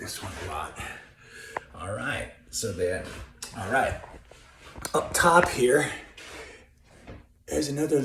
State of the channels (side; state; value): both; identical; correlation 1.00